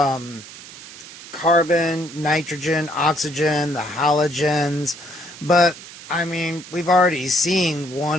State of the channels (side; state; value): right; noise; hiss, 16 dB below the sound